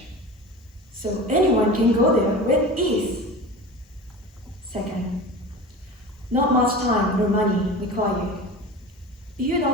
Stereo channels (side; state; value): both; normal; correlation 0.33